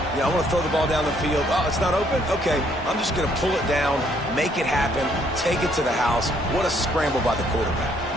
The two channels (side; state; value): both; normal; correlation 0.67